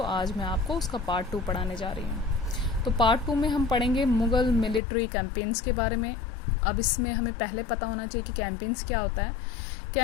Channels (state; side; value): drops out; right; at 4.8 s